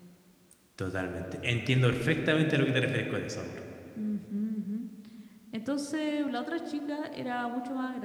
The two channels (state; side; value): identical; both; correlation 1.00